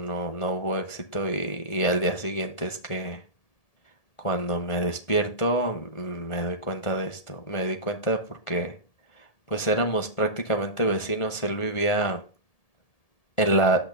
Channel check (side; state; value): right; late; 1.7 ms